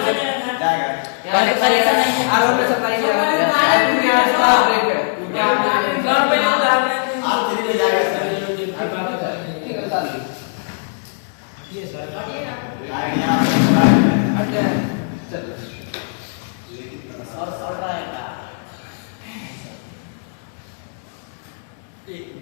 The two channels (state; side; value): silent; right; digital silence